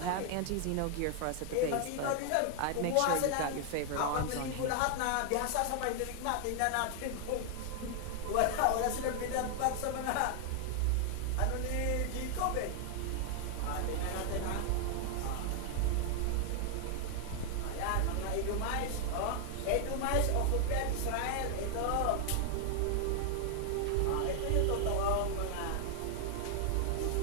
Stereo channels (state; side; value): different; both; correlation 0.00